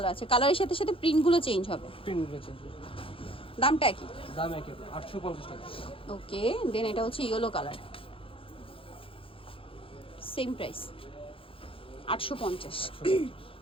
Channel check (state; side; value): late; right; 0.26 ms